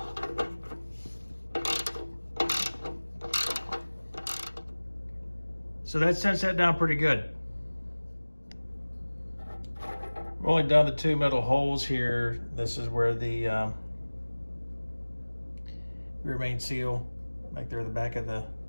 So that sets that down pretty good. Rolling down the two metal holes here, this is where the rear main seal, right there at the back of the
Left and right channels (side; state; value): both; inverted; correlation -1.00